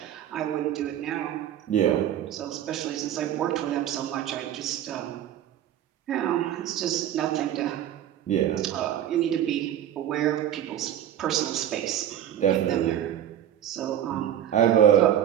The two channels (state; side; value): quieter; left; 10.9 dB